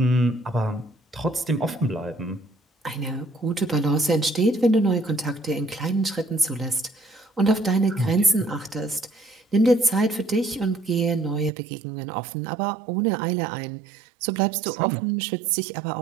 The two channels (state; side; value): drops out; left; at 11.5 s